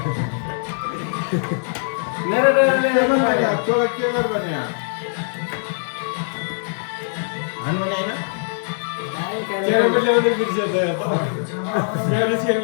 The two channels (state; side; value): silent; right; digital silence